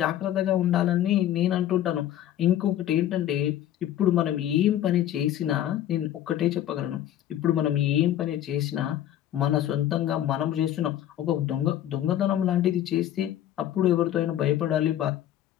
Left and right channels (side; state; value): right; quieter; 11.9 dB